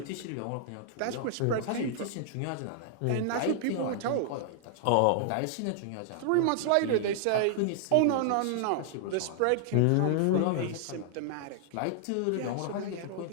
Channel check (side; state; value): both; different; correlation 0.00